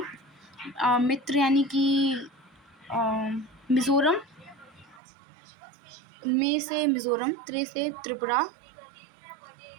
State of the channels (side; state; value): left; drops out; at 5.0 s